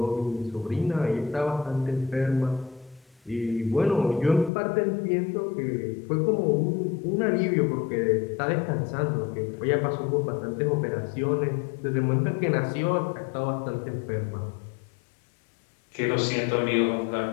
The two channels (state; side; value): drops out; right; at 4.5 s